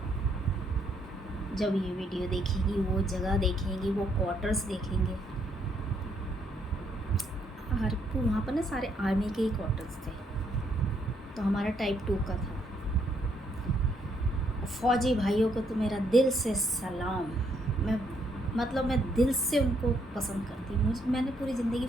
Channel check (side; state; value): both; normal; correlation 0.72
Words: जब ये वीडियो देखेंगी, वो जगह देखेंगी, वो क्वार्टर्स देखेंगे। और वहाँ पर ना सारे आर्मी के ही क्वार्टर्स थे, तो हमारा टाइप 2 का था। फ़ौजी भाइयों को तो मेरा दिल से सलाम। मैं दिल से उनको पसंद करती हूँ। मैंने पूरी ज़िंदगी